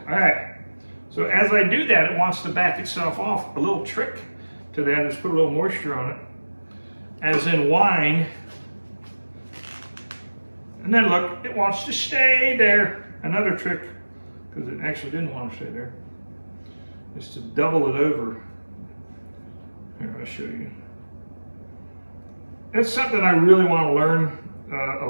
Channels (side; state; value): both; inverted; correlation -1.00